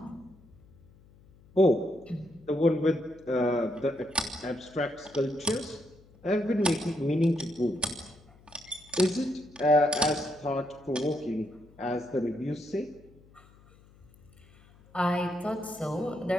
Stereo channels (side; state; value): left; noise; hum, 26 dB below the sound